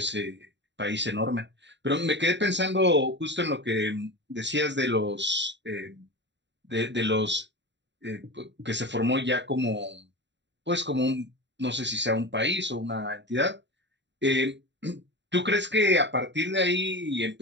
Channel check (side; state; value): left; late; 0.52 ms